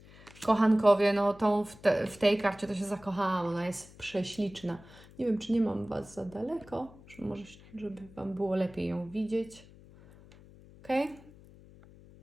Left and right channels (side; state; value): left; noise; hum, 22 dB below the sound